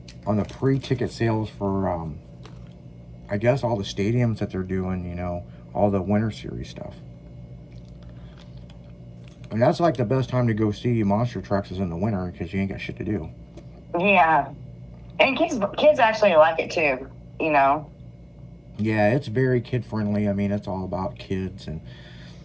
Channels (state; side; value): identical; both; correlation 1.00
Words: the pre-ticket sales for I guess all the stadiums that they're doing, all the winter series stuff. And that's like the best time to go see monster trucks is in the winter because you ain't got shit to do. Yeah. And kids actually like it too, you know. Yeah, it's very kid friendly. I mean, it's all about kids. And